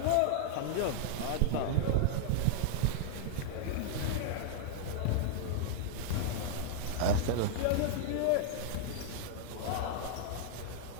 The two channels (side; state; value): both; different; correlation -0.01